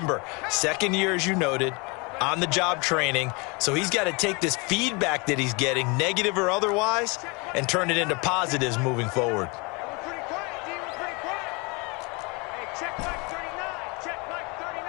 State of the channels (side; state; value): right; quieter; 29.2 dB